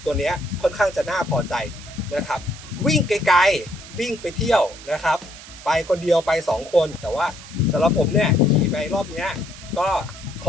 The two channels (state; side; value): noise; right; hiss, 16 dB below the sound